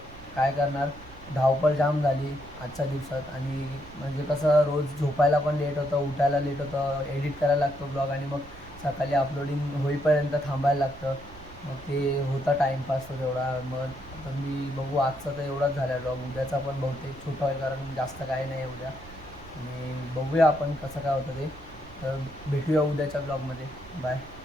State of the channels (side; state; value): right; noise; rumble, 18 dB below the sound